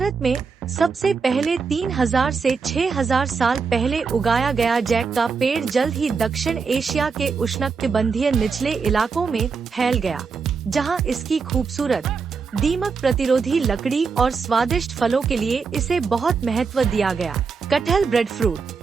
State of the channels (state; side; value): quieter; left; 5.2 dB